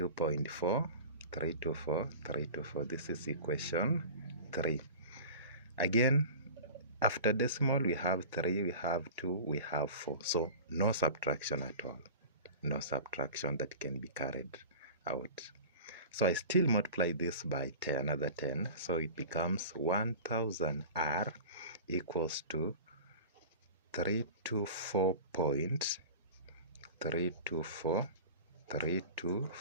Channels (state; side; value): inverted; both; correlation -0.36